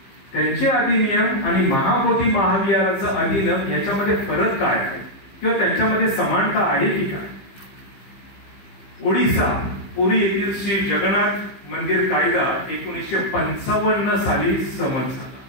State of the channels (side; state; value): right; late; 15 ms